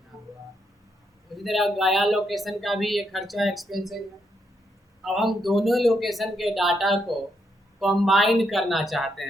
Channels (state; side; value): normal; both; correlation 0.79